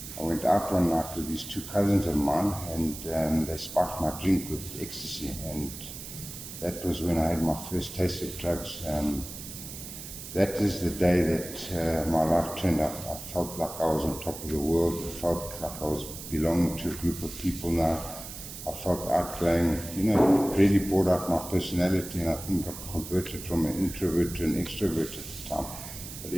I went out one night with these two cousins of mine, and they spiked my drink with ecstasy. And that was when I had my first taste of drugs. That is the day that my life turned up. I felt like I was on top of the world. I felt like I was belonging to a group of people now. I felt outgoing. It really brought out my personality, and I think I converted from an introvert to an extrovert at the time. But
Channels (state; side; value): noise; right; hiss, 11 dB below the sound